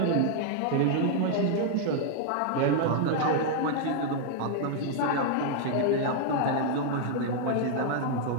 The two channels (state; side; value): different; both; correlation 0.00